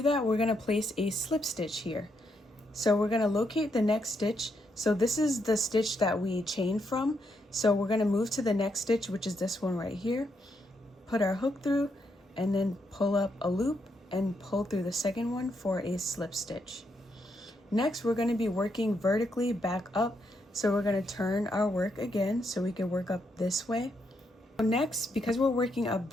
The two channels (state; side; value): normal; both; correlation 0.78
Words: that, we're going to place a slip stitch here. So we're going to locate the next stitch. So this is the stitch that we chained from. So we're going to move to the next stitch, which is this one right here. Put our hook through and then pull up a loop and pull through the second one for a slip stitch. Next, we're going to be working vertically back up. So we're going to turn our work again so we can work up this way. Next, because we're working up